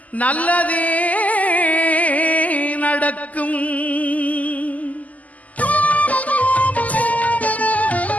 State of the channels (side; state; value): right; late; 0.075 ms